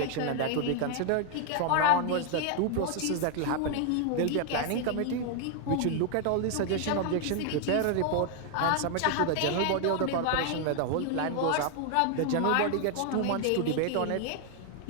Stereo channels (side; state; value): both; different; correlation 0.00